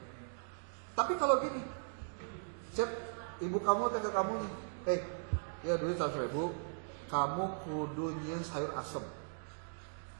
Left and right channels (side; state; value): left; silent; digital silence